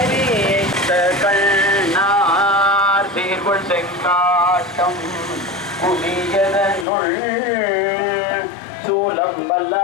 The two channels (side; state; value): right; drops out; at 6.9 s